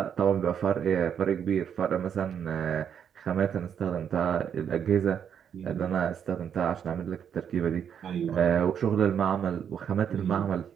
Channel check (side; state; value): left; quieter; 8.2 dB